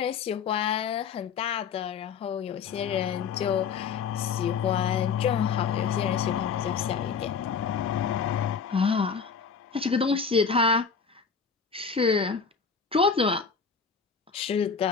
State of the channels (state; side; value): quieter; right; 5.8 dB